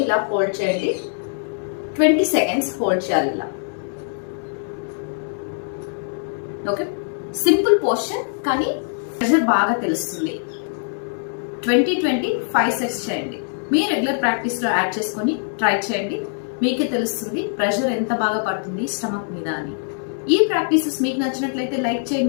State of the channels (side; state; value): right; silent; digital silence